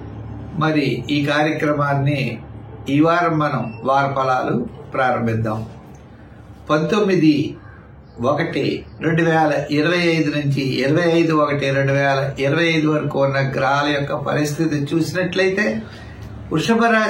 మరి ఈ కార్యక్రమాన్ని ఈ వారం మనం వార ఫలాలు ప్రారంభిద్దాం. 19/1/2025 నుంచి 25/1/2025 వరకు ఉన్న గ్రహాల యొక్క పరిస్థితి చూసినట్లయితే వృషభ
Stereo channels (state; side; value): identical; both; correlation 1.00